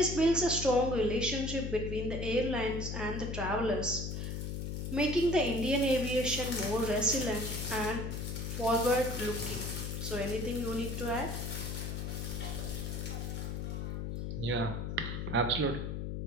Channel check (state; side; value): noise; left; hum, 4 dB below the sound